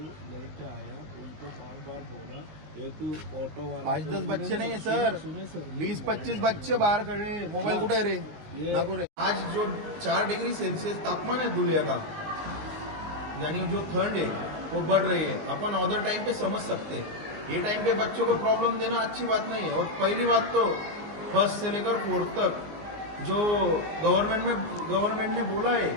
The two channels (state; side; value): late; left; 19 ms